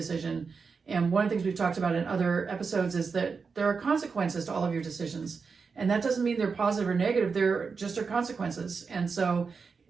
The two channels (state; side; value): quieter; left; 5.2 dB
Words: And one of the things we've talked about in other episodes is that there are consequences to all of your decisions. And that doesn't mean they're positive or negative. They're just our consequences. And so